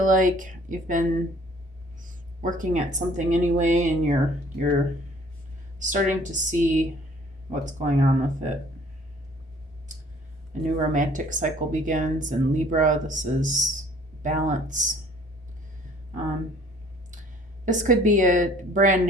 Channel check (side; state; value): both; normal; correlation 0.55